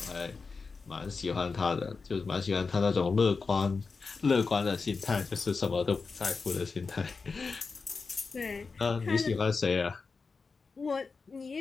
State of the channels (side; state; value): right; quieter; 4.6 dB